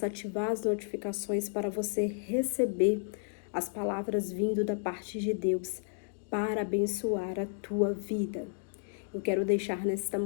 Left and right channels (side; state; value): right; silent; digital silence